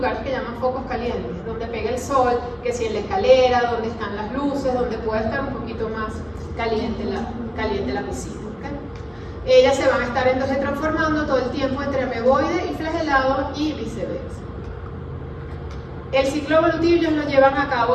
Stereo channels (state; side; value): identical; both; correlation 1.00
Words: que llaman focos calientes, donde pega el sol, que si en la escalera, donde están las luces, donde puede estar un poquito más caliente la piscina. ¿Okay? Ellas se van a estar entonces transformando todo el tiempo entre ameboide y flagelado y viceversa. El ciclo evolutivo ellos lo llevan a